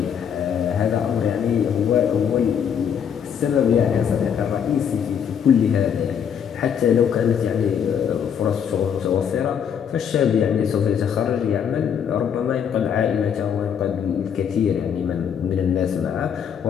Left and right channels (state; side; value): quieter; right; 8.0 dB